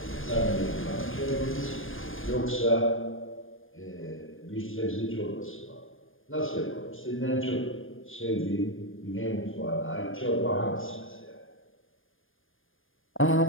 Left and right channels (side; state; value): right; late; 0.59 ms